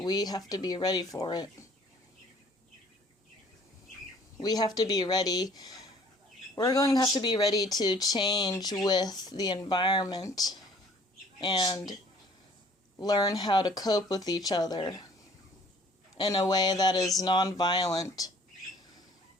have to be ready for it. We have to be ready. We're going to have to be ready to change with the environment and learn how to cope with each other in a way that is non-violent.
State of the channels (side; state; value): both; normal; correlation 0.55